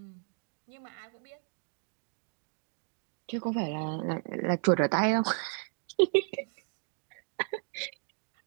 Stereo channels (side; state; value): left; silent; digital silence